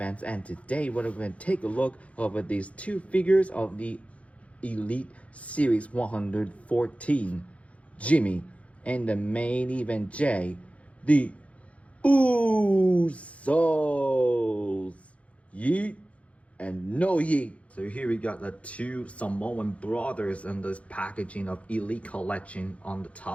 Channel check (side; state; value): right; late; 0.064 ms